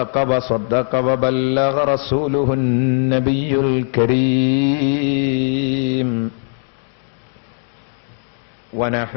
وبلغ رسوله النبي الكريم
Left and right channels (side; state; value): right; silent; 61 dB below the other